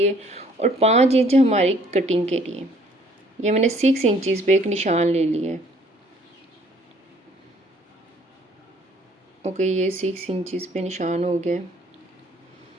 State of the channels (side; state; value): both; normal; correlation 0.59